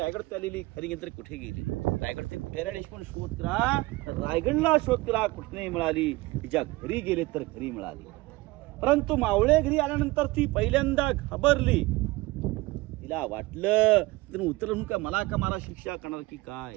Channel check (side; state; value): left; quieter; 21.1 dB